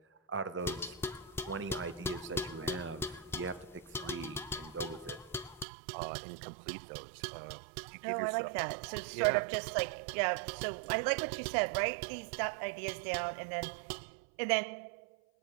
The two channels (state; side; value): drops out; left; at 5.7 s